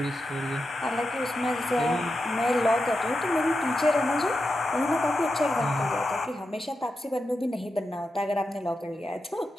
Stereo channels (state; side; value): normal; both; correlation 0.89